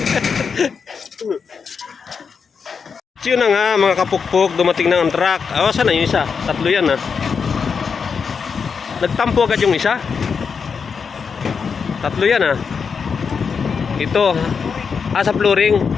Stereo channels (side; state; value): right; quieter; 5.9 dB